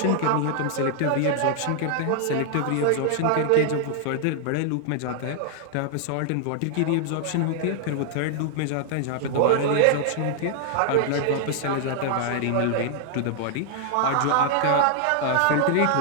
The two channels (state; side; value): different; both; correlation 0.00